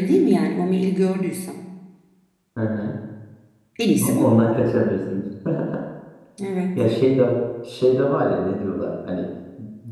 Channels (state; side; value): identical; both; correlation 1.00